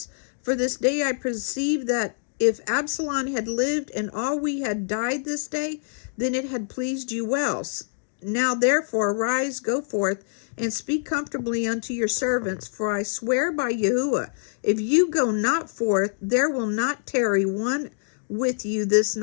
For this day I perceive that if Absalom had lived and all we had died this day, then it had pleased you well. Now therefore arise, go forth, and speak comfortably unto your servants. For I swear by Yahuwah, if you go not forth, there will not tarry one with you this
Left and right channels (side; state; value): right; silent; digital silence